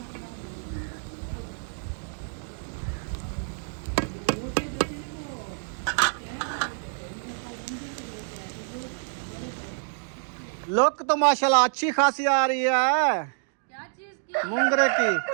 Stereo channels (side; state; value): left; silent; digital silence